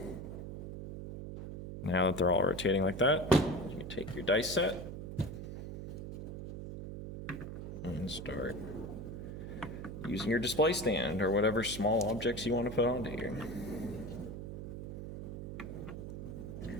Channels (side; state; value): right; noise; hum, 8 dB below the sound